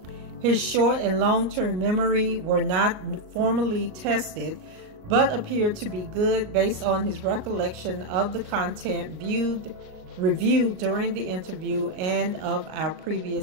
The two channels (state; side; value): late; left; 38 ms